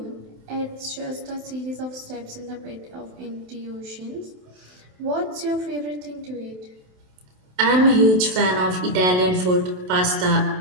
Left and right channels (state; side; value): late; left; 27 ms